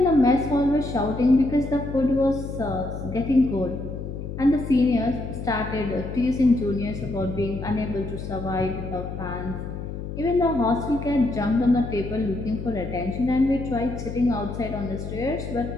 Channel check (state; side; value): noise; left; hum, 7 dB below the sound